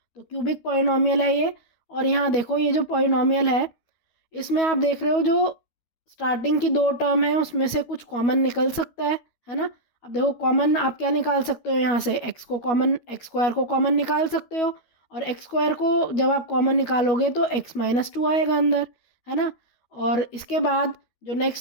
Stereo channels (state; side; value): late; right; 12 ms